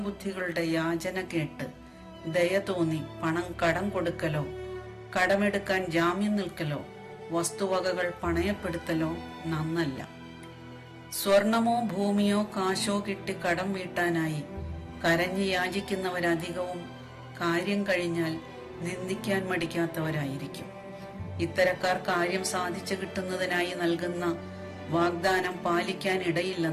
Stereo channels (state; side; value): identical; both; correlation 1.00